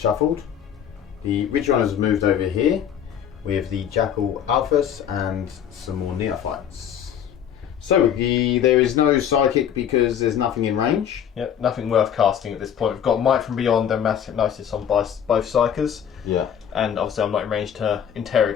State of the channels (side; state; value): right; quieter; 9.0 dB